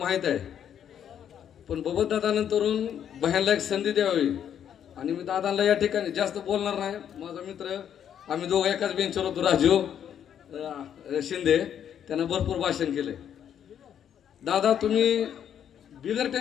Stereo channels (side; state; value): right; quieter; 9.2 dB